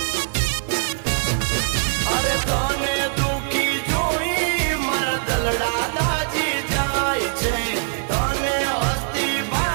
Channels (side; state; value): left; silent; digital silence